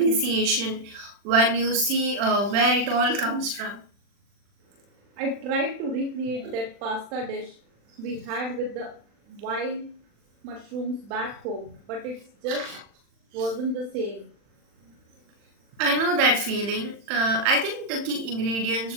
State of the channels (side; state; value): left; late; 40 ms